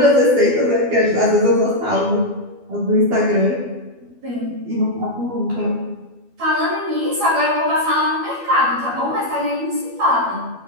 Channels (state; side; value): late; left; 12 ms